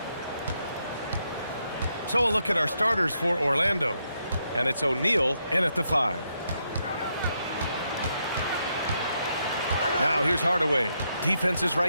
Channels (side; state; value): both; inverted; correlation -0.79